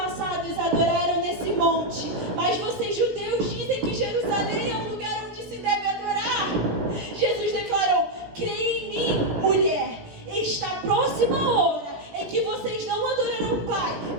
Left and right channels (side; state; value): left; late; 17 ms